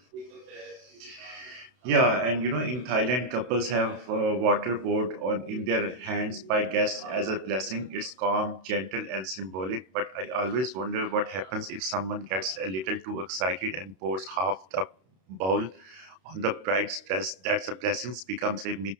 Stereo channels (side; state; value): left; late; 32 ms